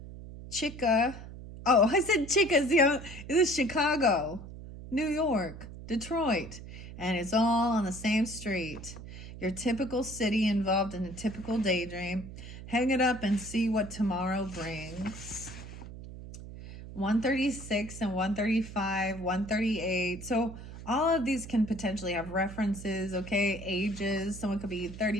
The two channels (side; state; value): right; noise; hum, 13 dB below the sound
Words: Chica, oh, I said Chica's, this is Chicago, New York, Detroit, and it's all on the same street. Your typical city involved in a typical daydream. Hang it up and see what tomorrow brings. 136 and 135, 138. So all of these can potentially have references, okay? Ages. Someone could be